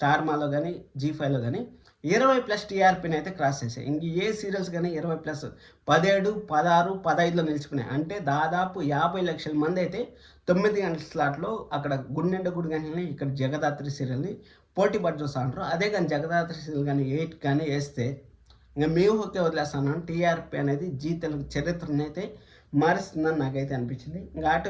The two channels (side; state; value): both; identical; correlation 1.00